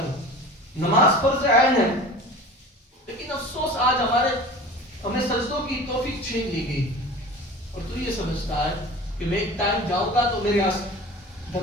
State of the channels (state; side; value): normal; both; correlation 0.38